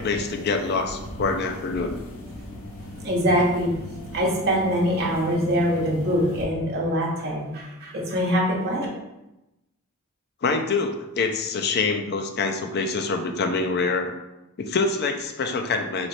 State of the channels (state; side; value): normal; both; correlation 0.25